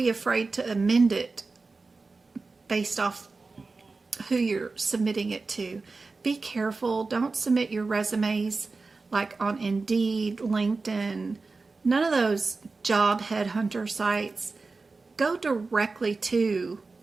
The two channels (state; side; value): quieter; left; 3.9 dB